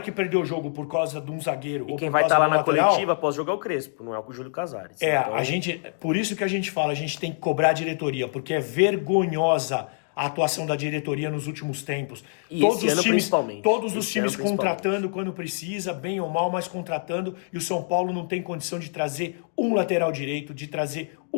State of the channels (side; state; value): right; silent; digital silence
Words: que perdeu o jogo por causa de um zagueiro e ou quem por vai causa estar lá na lateral, coletiva após jogar o Crespo, não é o Júlio Casares. Então... por isso que a gente fala, a gente tem que cobrar a diretoria, porque é vergonhosa a atuação da diretoria nos últimos tempos. E todos os times contratando quando precisa, bem ou mal, mas contratando, e o São Paulo não tem condição de trazer um lateral direito, de trazer